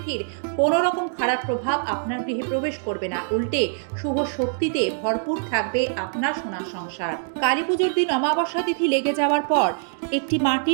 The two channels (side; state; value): left; silent; digital silence